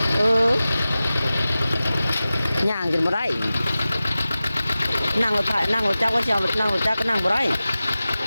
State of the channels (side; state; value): both; inverted; correlation -0.96